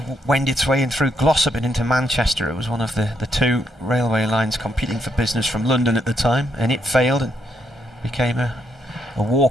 wend its way in through Glossop and into Manchester. It was one of the 2 railway lines competing for business from London at the time, and it failed and became a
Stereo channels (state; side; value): normal; both; correlation 0.77